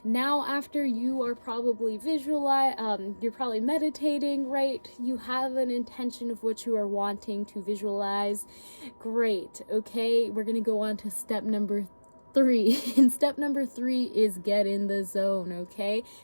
Now, after you are probably you're probably meditating, right? You have an intention of what you are wanting to visualize. Great. Okay, we're going to go on to step number 3. And step number 3 is get in the zone, okay?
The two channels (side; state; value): both; inverted; correlation -1.00